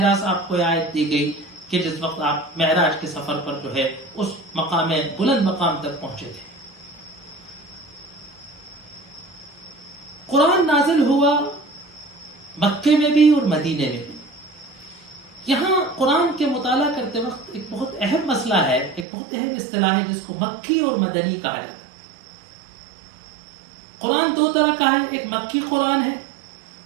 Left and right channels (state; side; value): drops out; left; at 19.1 s